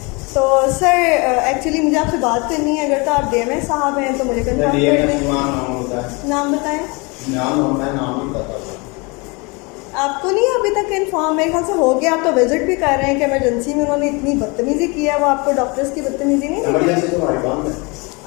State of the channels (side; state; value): right; quieter; 28.6 dB